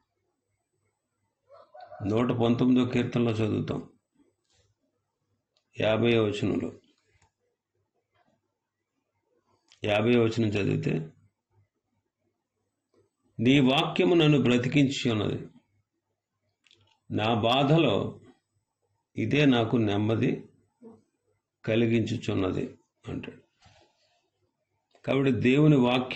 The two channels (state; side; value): identical; both; correlation 1.00